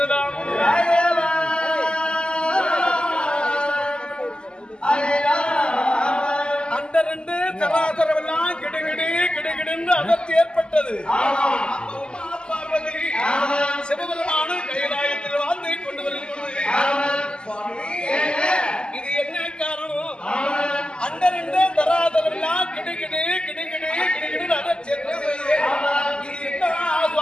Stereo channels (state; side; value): late; right; 0.049 ms